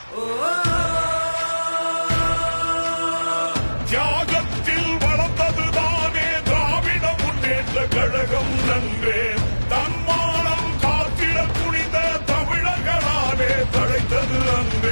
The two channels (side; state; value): both; inverted; correlation -1.00